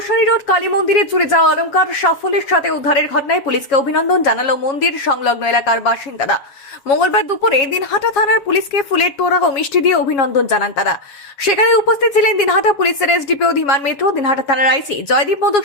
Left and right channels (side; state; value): right; late; 7.2 ms